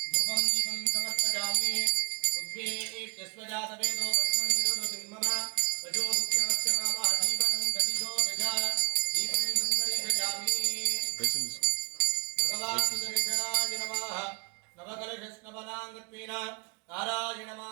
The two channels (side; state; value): left; quieter; 30.3 dB